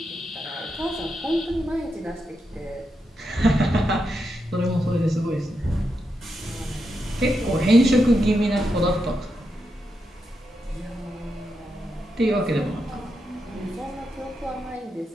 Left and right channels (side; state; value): both; normal; correlation 0.85